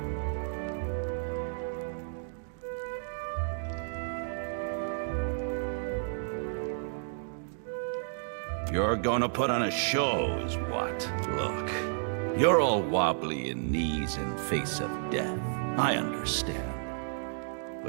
You're gonna put on a show, is what? Look, you're all wobbly in knees in face of death. I understand.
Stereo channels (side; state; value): left; silent; digital silence